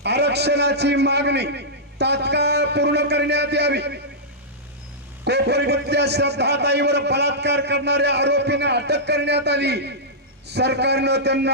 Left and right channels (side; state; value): both; normal; correlation -0.12